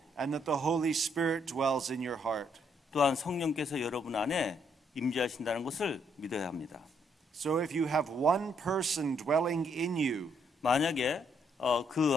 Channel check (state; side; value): normal; both; correlation 0.72